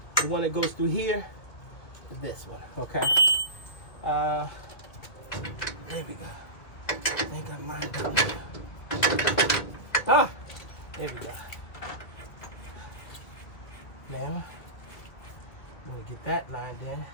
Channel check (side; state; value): right; late; 2.4 ms